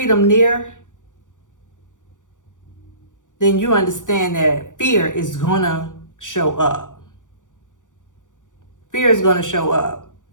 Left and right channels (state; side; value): late; right; 0.87 ms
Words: near, then you understand that fear is gonna show up. Fear is gonna show up,